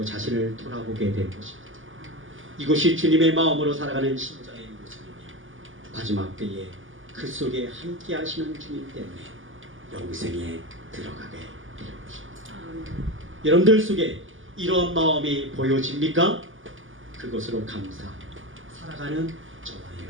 자신을 돌아보게 될 것입니다. 이것이 주님의 마음으로 살아가는 신자의 모습이며 마지막 때에 그 속에 함께 하시는 주님 때문에 영생에 들어가게 될 것입니다. 여러분들 속에 이러한 마음이 보여집니까? 그것으로 감사 살아가는 저와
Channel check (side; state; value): left; late; 0.58 ms